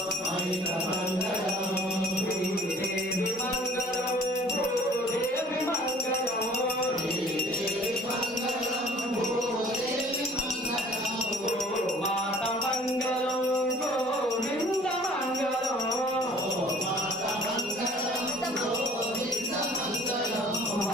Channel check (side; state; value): both; normal; correlation 0.52